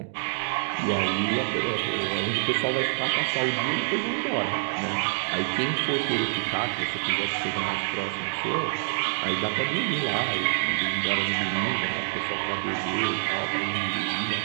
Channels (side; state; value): left; silent; digital silence